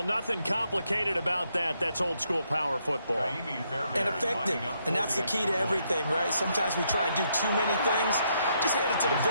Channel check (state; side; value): inverted; both; correlation -0.75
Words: nothing complicated about that. That's old-school power football. And effective. And that's the key to everything, right? Sometimes we try and do too many things. Just hand it to the